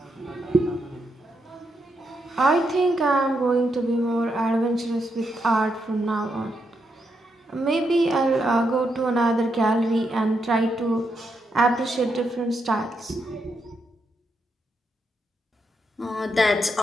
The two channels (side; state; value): both; normal; correlation 0.81